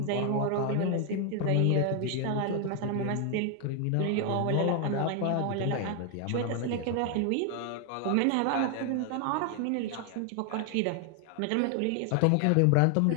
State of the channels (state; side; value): different; both; correlation 0.00